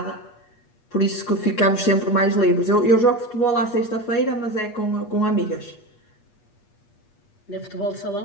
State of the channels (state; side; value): late; right; 8.4 ms